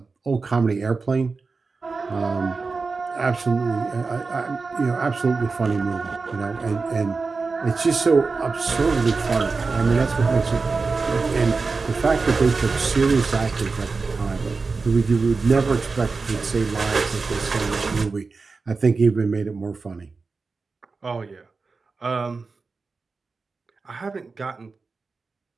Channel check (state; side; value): quieter; left; 4.3 dB